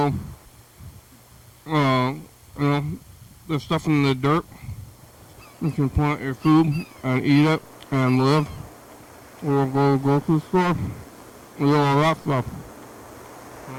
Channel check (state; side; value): identical; both; correlation 1.00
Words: there's stuff in the dirt. You can plant your food and eat it and live. Or go to the grocery store. We do all that stuff.